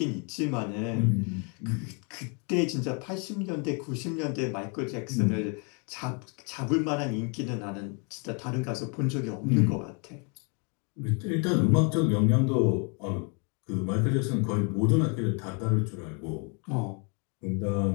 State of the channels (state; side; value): quieter; right; 35.8 dB